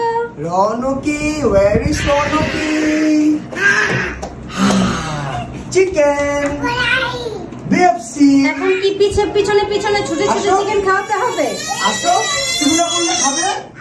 Ronki, where is Ronki? Chicken BFC. এখন কি পিছনে পিছনে ছুটে ছুটে চিকেন খাওয়াতে হবে? আসো, তুমি না বললে খাবে?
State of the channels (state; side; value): identical; both; correlation 1.00